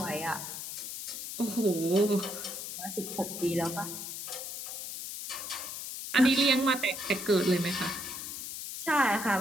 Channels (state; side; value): noise; left; hiss, 7 dB below the sound